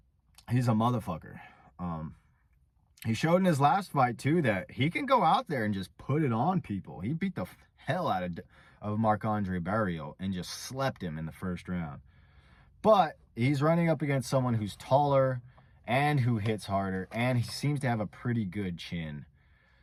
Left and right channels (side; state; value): both; identical; correlation 1.00